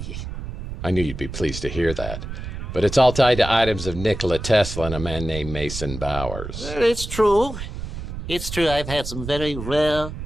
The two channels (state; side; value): noise; right; rumble, 8 dB below the sound